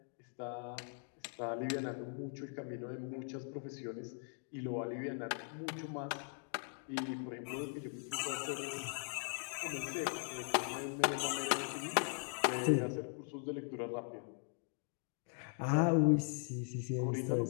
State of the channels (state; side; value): silent; right; 51 dB below the other